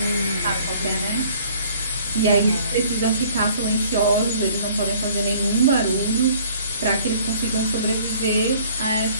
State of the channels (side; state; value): both; inverted; correlation -0.55